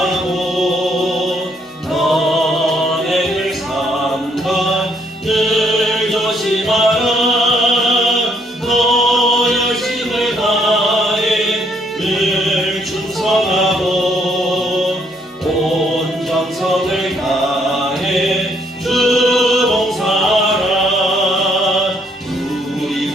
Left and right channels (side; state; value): both; normal; correlation 0.70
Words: 너네를 삼가 늘 조심하라. 너 열심을 다해 늘 충성하고 온 정성을 다해 주 봉사하라. 우리